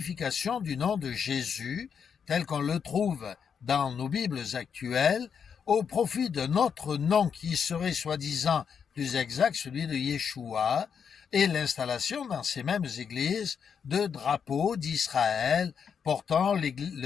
du nom de Jésus, tel qu'on le trouve dans nos Bibles actuelles, au profit d'un autre nom qui serait soi-disant plus exact, celui de Yeshua, et l'installation dans ces mêmes églises de drapeaux d'Israël portant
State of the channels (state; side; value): quieter; right; 7.0 dB